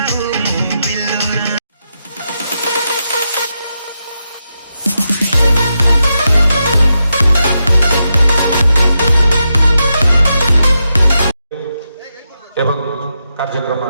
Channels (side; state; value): both; inverted; correlation -0.86